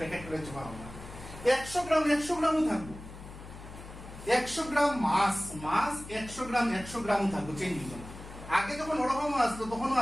চেপা করলাম, 100 গ্রাম 100 গ্রামও থাকবো। 100 গ্রাম মাস, মাস 100 গ্রাম 100 গ্রামও থাকবো, চেঞ্জ হইতো না। আগে যখন ওরকম আসতো, তখনও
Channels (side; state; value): left; noise; hum, 14 dB below the sound